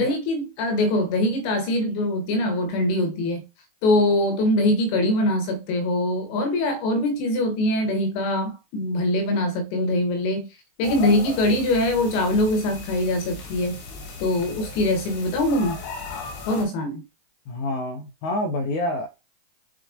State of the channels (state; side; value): late; right; 19 ms